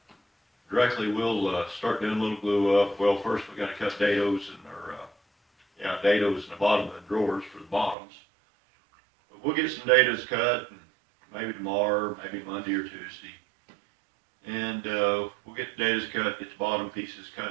Directly, we'll start doing a little glue up. Well, first we got to cut dados dados in the bottom of the drawers for the bottoms. But we'll get some dados cut, and maybe tomorrow, maybe Monday or Tuesday. And we'll get the dados cut, get the bottom pieces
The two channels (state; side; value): drops out; left; at 8.0 s